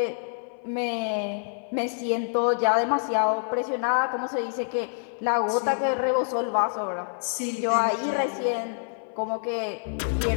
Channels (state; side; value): silent; right; 60 dB below the other